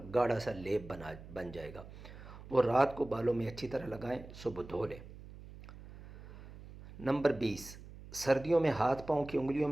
گاڑھا سا لیپ بن جائے گا، وہ رات کو بالوں میں اچھی طرح لگائیں، صبح دھو لیں۔ نمبر 20، سردیوں میں ہاتھ پاؤں کی انگلیوں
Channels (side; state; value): right; noise; hum, 16 dB below the sound